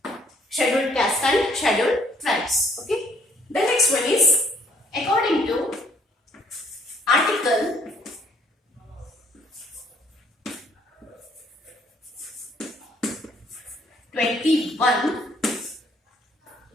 scheduled caste and scheduled tribes. Okay. The next one is according to Article 21,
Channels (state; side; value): normal; both; correlation 0.64